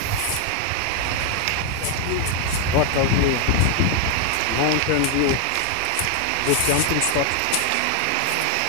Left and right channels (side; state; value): both; different; correlation 0.00